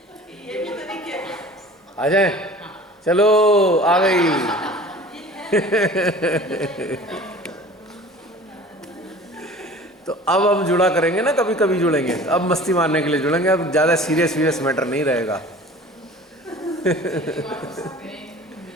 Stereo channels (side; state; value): both; normal; correlation 0.43